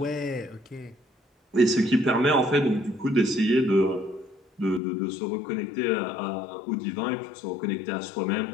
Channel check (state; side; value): drops out; right; at 4.8 s